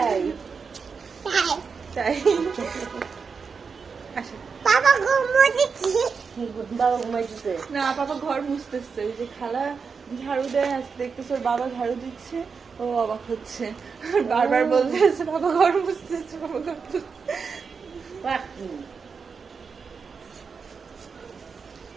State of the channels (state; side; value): quieter; left; 5.5 dB